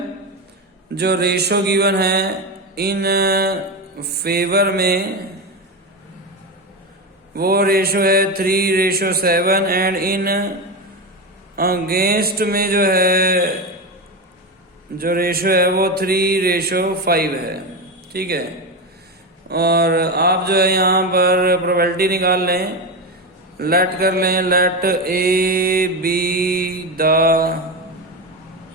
जो रेशो गिवन है इन फेवर में वो रेशो है 3:7 एंड इन अगेंस्ट में जो है जो रेशो है वो 3:5 है। ठीक है, और आप जो है यहाँ पर प्रोबेबिलिटी निकाल लें लेट कर लें, let A B the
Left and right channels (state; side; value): normal; both; correlation 0.16